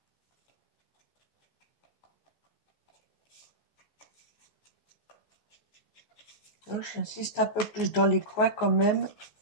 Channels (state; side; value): late; right; 14 ms